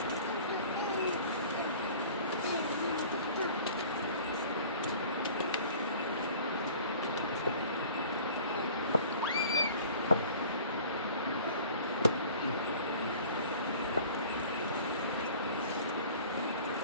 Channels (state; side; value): inverted; both; correlation -0.46